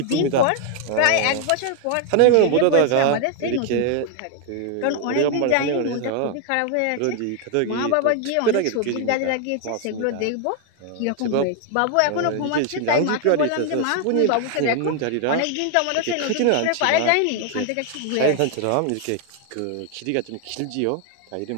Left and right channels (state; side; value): different; both; correlation 0.00